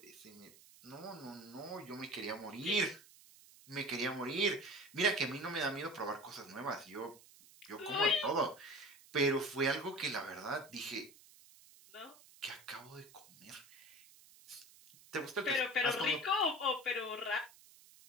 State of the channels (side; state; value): right; noise; hiss, 23 dB below the sound